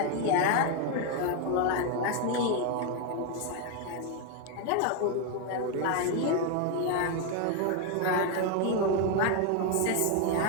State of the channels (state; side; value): different; both; correlation 0.01